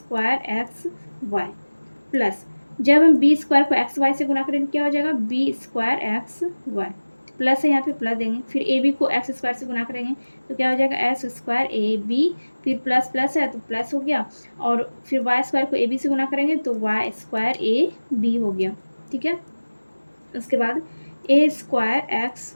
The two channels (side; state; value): both; inverted; correlation -1.00